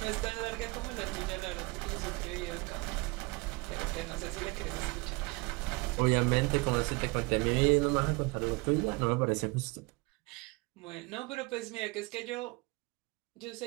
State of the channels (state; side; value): quieter; left; 25.9 dB